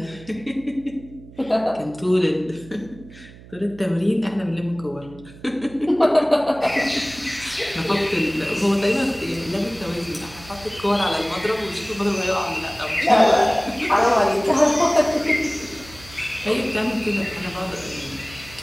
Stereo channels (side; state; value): right; noise; hum, 20 dB below the sound